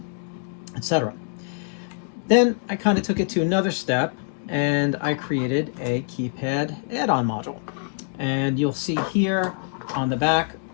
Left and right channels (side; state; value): right; silent; digital silence